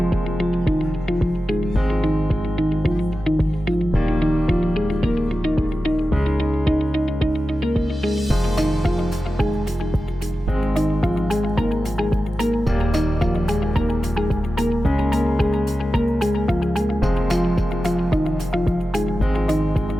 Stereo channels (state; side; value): normal; both; correlation 0.93